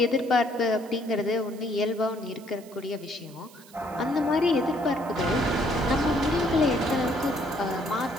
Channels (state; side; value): noise; right; hiss, 23 dB below the sound